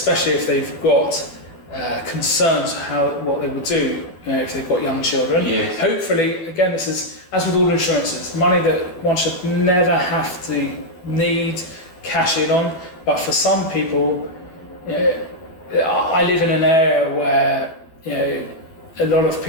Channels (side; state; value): right; late; 12 ms